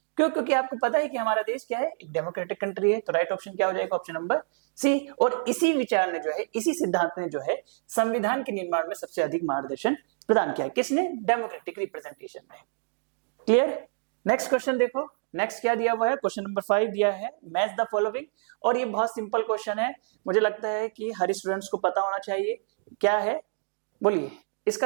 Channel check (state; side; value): silent; left; digital silence